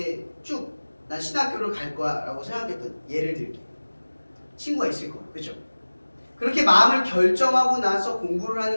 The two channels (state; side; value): inverted; both; correlation -1.00